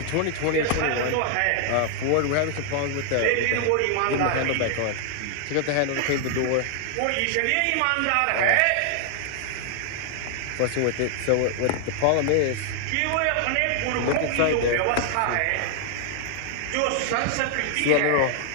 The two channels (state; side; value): different; both; correlation 0.00